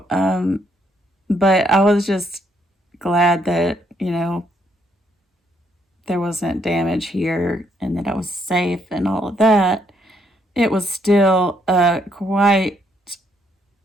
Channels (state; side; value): normal; both; correlation 0.72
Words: but I was just glad that, there wasn't damage here and that I was safe and all of that. It was still quite